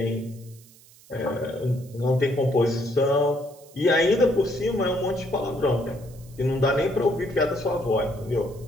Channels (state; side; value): noise; right; hiss, 25 dB below the sound